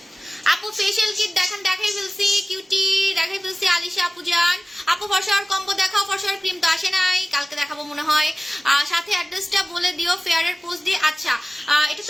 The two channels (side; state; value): both; normal; correlation 0.97